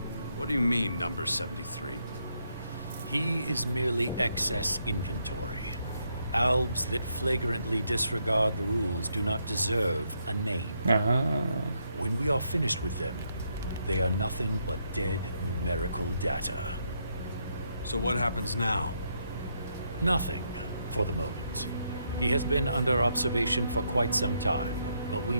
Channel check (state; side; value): inverted; both; correlation -0.77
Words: What do you mean, number 73? He is merely excess inventory. Albs that flagrantly disregard the rules do not deserve a name. When we are finished with them, they are nothing but dead numerical data. So what happens now? Nothing, for the moment. He has been under observation for quite some time, but we